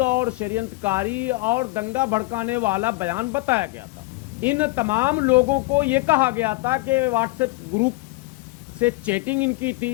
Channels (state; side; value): quieter; right; 22.5 dB